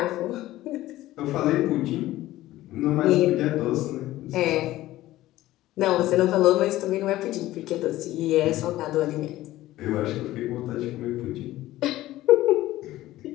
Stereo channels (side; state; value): right; quieter; 15.8 dB